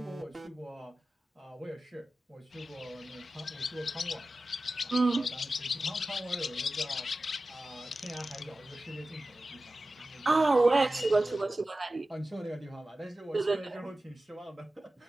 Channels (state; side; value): normal; both; correlation 0.95